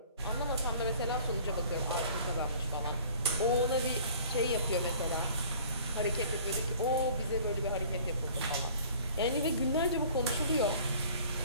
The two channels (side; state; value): both; inverted; correlation -0.49